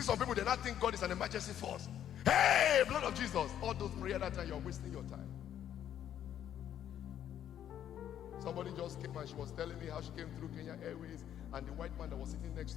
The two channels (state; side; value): quieter; right; 10.4 dB